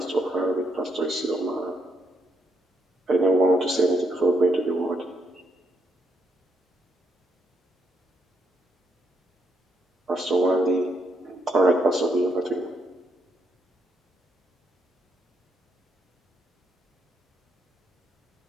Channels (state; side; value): normal; both; correlation 0.78